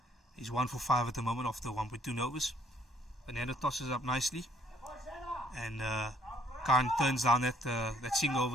He's 1 for 5 at the moment after 1.2 overs. Fernando tosses up nicely, and Khan turns down that single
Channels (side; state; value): both; normal; correlation 0.64